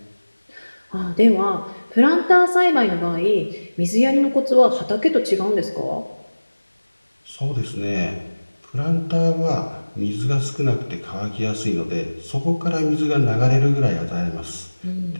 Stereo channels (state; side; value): inverted; both; correlation -1.00